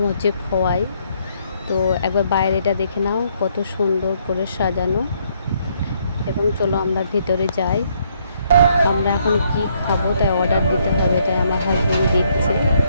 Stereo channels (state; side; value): inverted; both; correlation -0.70